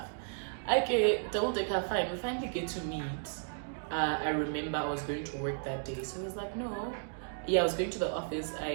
Okay, Double Decker, fine. We finally get to meet. I remember I was going to work that day, so he was like, no. Yeah, I was going to the office.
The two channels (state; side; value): silent; left; digital silence